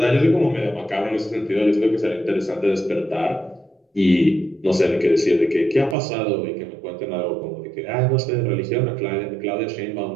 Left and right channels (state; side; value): drops out; left; at 6.0 s